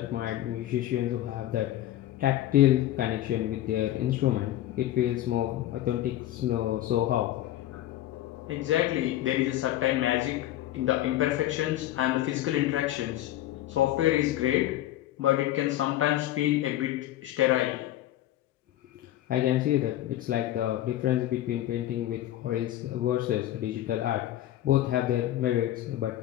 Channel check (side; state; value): right; quieter; 13.7 dB